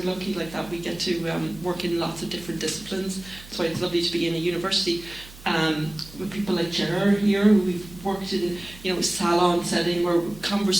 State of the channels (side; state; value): right; noise; hum, 19 dB below the sound